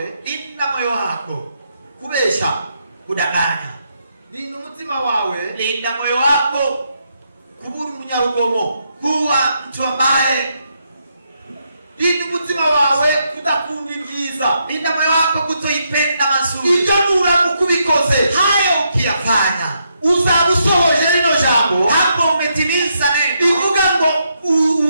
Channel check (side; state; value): both; inverted; correlation -0.79